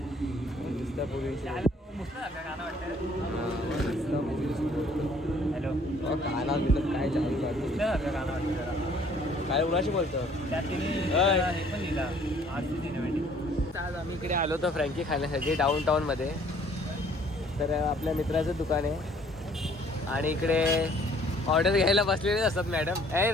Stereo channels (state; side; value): normal; both; correlation 0.58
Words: हॅलो काना मिळत काय चालू काय उन्हाशी बोलतो. आज आम्ही इकडे आलो होतो फ्रँकी खाण्यासाठी डाऊन टाऊनमध्ये. तर आपल्या मित्राचं दुकान आहे आणि इकडे ऑर्डर घ्यायला बसलेलेच असतात मॅडम. ए